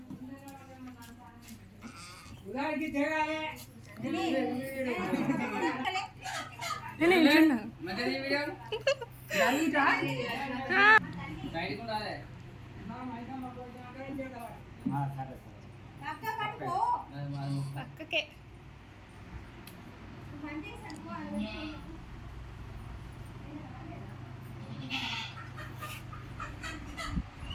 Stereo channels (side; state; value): both; identical; correlation 1.00